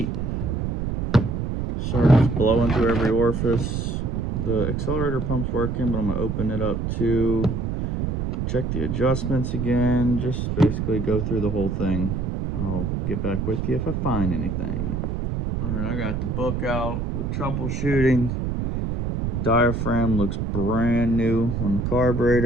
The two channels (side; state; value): right; noise; rumble, 2 dB below the sound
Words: Starts blowing through every orifice. The accelerator pump's working, but I'm gonna open it up too. Check the adjustments again. Just basically go through the whole thing. I'll get back with you if I find anything. Alright, I got the book out with troubleshooting. Diaphragm looks brand new on the